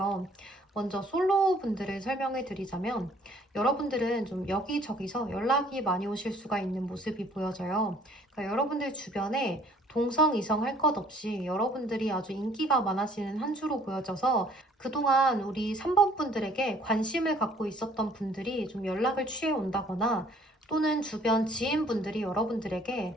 먼저 솔로 분들을 설명해 드리자면 여러분들은 좀 여기저기서 연락이 많이 오실 수가 있는 모습이 보여져요. 그러니까 여러분들 주변에 동성, 이성 할 것 없이 여러분들이 아주 인기가 많아지는 한 주로 보여져서 그동안 우리 3번 분들에게 관심을 갖고 있었던 분들이 좀 연락을 취해 온다거나 또는 주변 지인분들이 여러분들에게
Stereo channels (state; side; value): normal; both; correlation 0.57